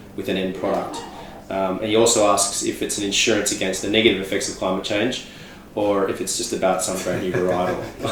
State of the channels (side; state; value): both; identical; correlation 1.00